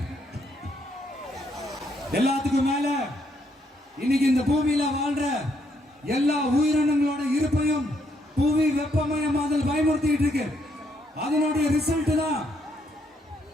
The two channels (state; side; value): normal; both; correlation 0.74